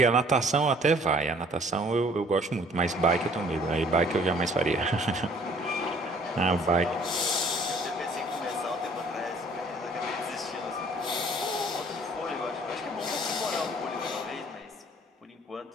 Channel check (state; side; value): normal; both; correlation 0.56